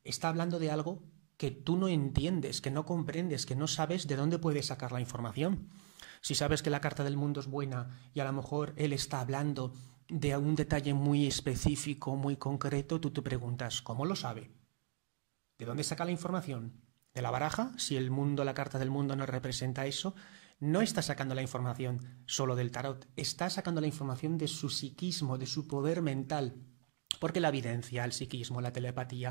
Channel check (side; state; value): left; silent; digital silence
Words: está hablando de algo que tú no entiendes, que no comprendes, que no sabes de dónde puedes sacar la información. Si sabes que la carta del mundo es buena y a lo mejor él está hablando de un detalle muy específico, muy concreto, tú te preguntas, ¿cómo lo sabe? ¿De dónde saca la información? ¿De la baraja? Si el mundo, la carta del mundo no representa eso, no está sacando la información solo del tarot, está sacando la información de su psiquismo, de su poder mental. Porque la evidencia, el psiquismo, la